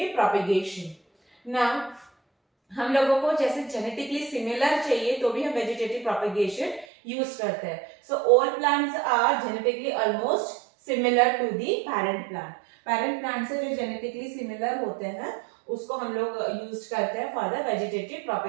propagation. Now हम लोगों को जैसे जेनेटिकली सिमिलर चाहिए तो भी हम वेजिटेटिव प्रोपेगेशन यूज करते हैं. So all plants are genetically almost similar to the parent plant. Parent plant से जो जेनेटिकली सिमिलर होते हैं उसको हम लोग यूज करते हैं for the vegetative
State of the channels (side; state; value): left; drops out; at 6.9 s